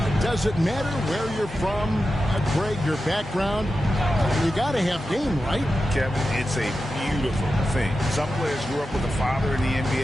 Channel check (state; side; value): normal; both; correlation 0.91